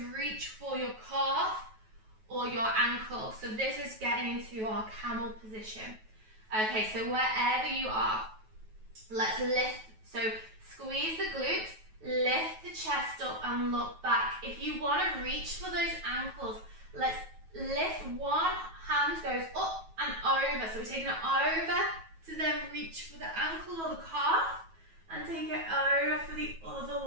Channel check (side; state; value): left; late; 9.2 ms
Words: reach for your calf or your ankle. So this is getting into our camel position. Okay, so wherever you are, let's lift. So squeeze the glutes, lift the chest up and look back. If you want to reach for those ankles, let's lift. One hand goes up and over. So we're taking it over to then reach for the ankle or the calf and take it over for the other